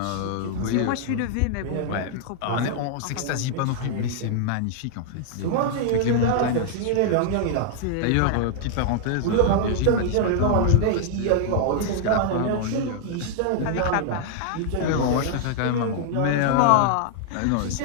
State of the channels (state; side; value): different; both; correlation -0.01